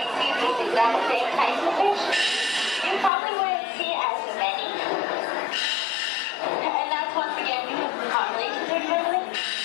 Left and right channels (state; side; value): drops out; right; at 3.1 s